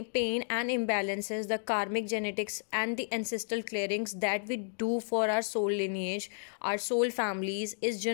and imbalances, the karmic genetics and the ancestral clearings that we do for our soul lineage, our soul families, is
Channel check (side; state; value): right; silent; digital silence